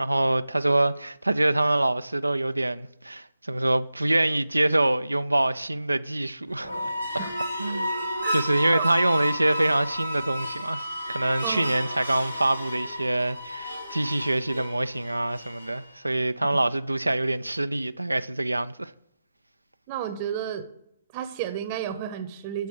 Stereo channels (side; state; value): both; inverted; correlation -0.93